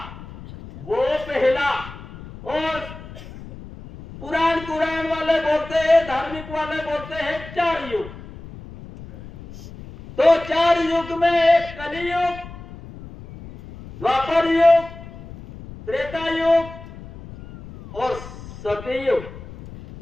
वो पहला। और पुराण वाले बोलते हैं, धार्मिक वाले बोलते हैं 4 युग। तो 4 युग में एक कलियुग, द्वापर युग, त्रेता युग और सतयुग।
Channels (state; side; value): noise; left; rumble, 15 dB below the sound